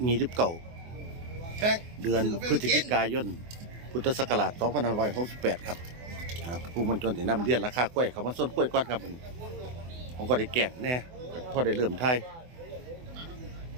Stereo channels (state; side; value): late; left; 24 ms